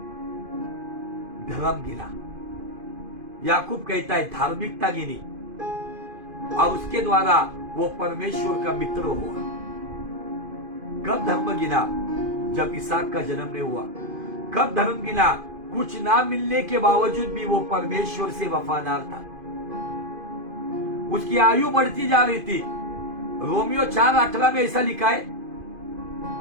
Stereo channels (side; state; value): left; late; 2.5 ms